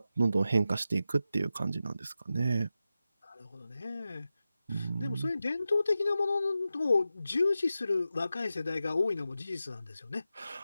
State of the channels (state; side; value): inverted; both; correlation -0.92